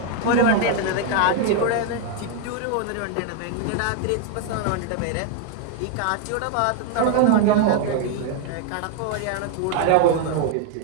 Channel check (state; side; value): different; both; correlation 0.01